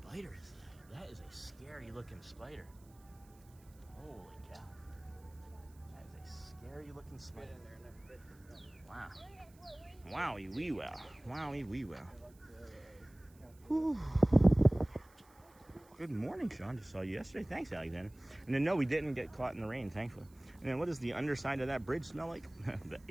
is that? That is a scary looking spider. Holy cow. That is a scary looking spider. Wow. Wowie wee wow. Wowie wee wow. Whew. Good morning, Sean. Just saw you yesterday. Thanks, Alexander. And then, no, we didn't get caught in the rain, thankfully. And then what does the underside of that bridge smell like? The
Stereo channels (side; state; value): right; noise; hiss, 28 dB below the sound